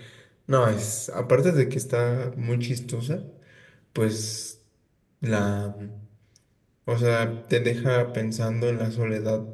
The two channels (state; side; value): identical; both; correlation 1.00